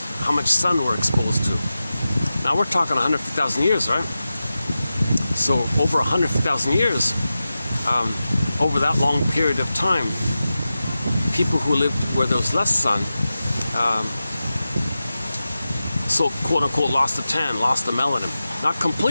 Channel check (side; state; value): both; inverted; correlation -0.94